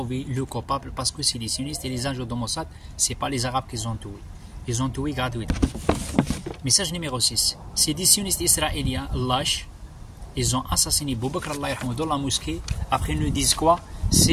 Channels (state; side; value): identical; both; correlation 1.00